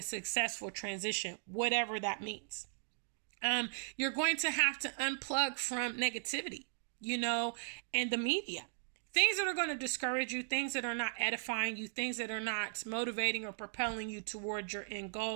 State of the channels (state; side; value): silent; left; digital silence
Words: successful transition, whatever that means. You're going to have to unplug from negativity, and the media. Things that are going to discourage you, things that are not edifying you, things that are not motivating or propelling you towards your end